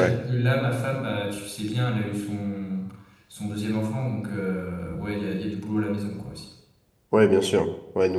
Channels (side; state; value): both; identical; correlation 1.00